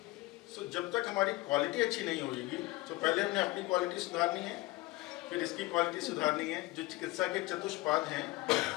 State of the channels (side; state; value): right; quieter; 20.1 dB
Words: सो जब तक हमारी क्वालिटी अच्छी नहीं होगी तो पहले हमने अपनी क्वालिटी सुधारनी है, फिर इसकी क्वालिटी सुधारनी है। जो चिकित्सा के चतुष्पाद हैं